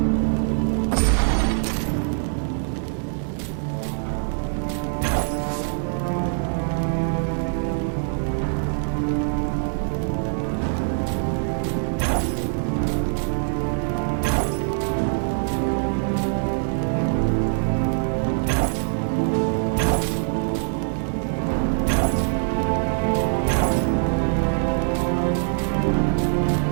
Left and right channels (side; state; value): left; silent; 62 dB below the other